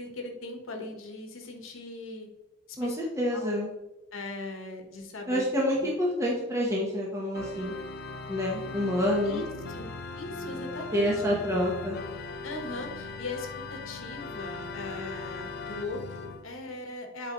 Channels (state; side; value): normal; both; correlation 0.43